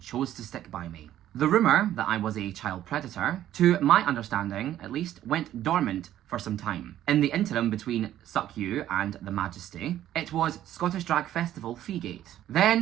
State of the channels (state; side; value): quieter; left; 12.3 dB